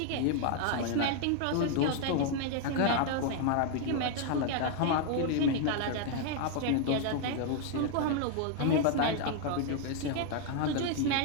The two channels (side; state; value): both; different; correlation 0.00